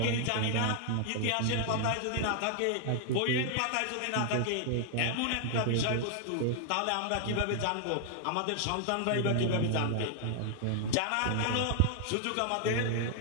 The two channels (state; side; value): different; both; correlation 0.00